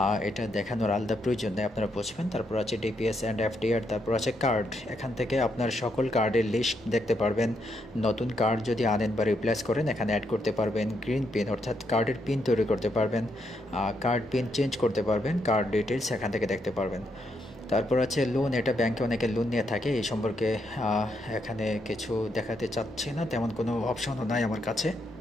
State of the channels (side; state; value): both; normal; correlation 0.78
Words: এটা দেখানোর আলাদা প্রয়োজন নেই, আপনারা বুঝবেন। তারপর আছে ডিপিএস অ্যান্ড এফডিআর। তারপর আছে কার্ড, এখান থেকে আপনার সকল কার্ডের লিস্ট দেখতে পারবেন। নতুন কার্ড যদি আনেন বা রিপ্লেস করেন এখানে অ্যাড করতে পারবেন। গ্রিন পিন, অর্থাৎ কার্ডের পিন তৈরি করতে পারবেন, কার্ড পিন চেঞ্জ করতে পারবেন, কার্ড ডিটেলস এখান থেকে দেখতে পারবেন। তারপর আছে লোন, এটা ব্যাংকে অনেকে লোন নিয়ে থাকে, এই সম্পর্কে এখানে কিছু দেখাতে চাচ্ছি না, তেমন কোনো অপশনও নাই আমার কাছে।